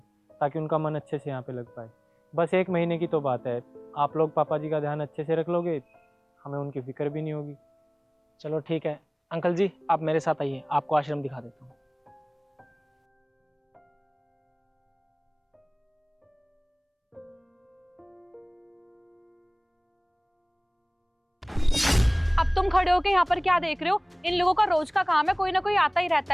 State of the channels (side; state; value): both; identical; correlation 1.00